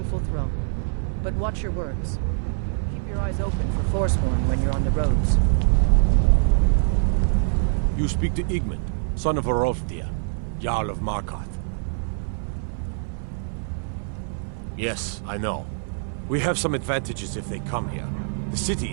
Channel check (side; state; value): left; silent; 57 dB below the other